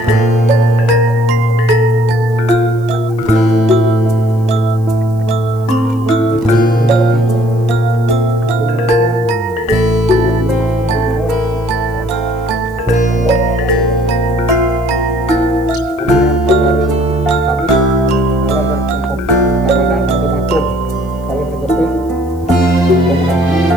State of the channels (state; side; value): noise; left; hiss, 29 dB below the sound